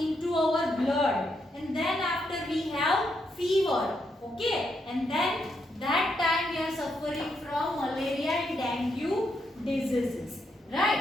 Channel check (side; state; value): both; normal; correlation 0.79